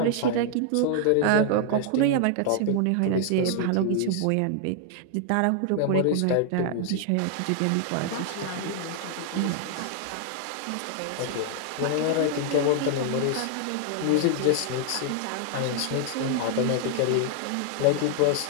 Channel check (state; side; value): different; both; correlation 0.00